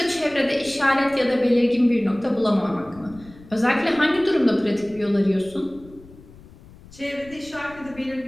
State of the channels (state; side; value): noise; left; rumble, 22 dB below the sound